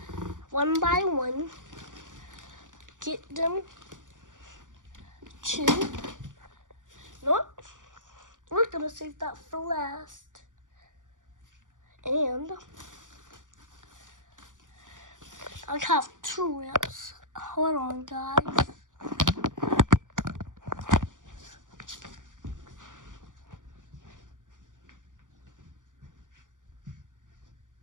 one by one get them to. Nope, we're gonna save that for last. And I have 2 ramps. Hold on, guys.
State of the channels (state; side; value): late; left; 0.87 ms